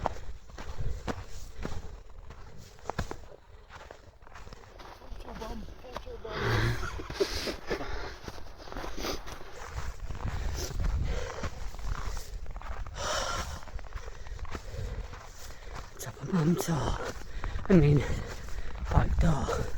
Top of Mam Tor. I mean, back door.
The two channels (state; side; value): identical; both; correlation 1.00